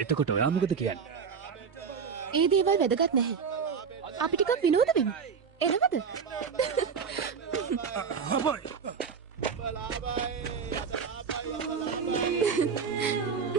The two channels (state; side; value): quieter; left; 6.2 dB